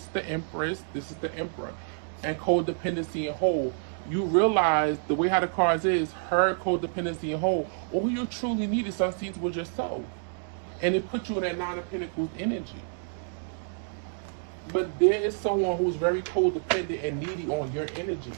is the Empress, this is the Emperor, and codependency and whole. You realize the way how the cards is, her, codependency and whole. All you truly needed, some seeds, was yourself, and it put you in that Nine of Pentacles energy. But there is someone who's very codependent and needy on your energy,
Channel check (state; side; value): silent; left; digital silence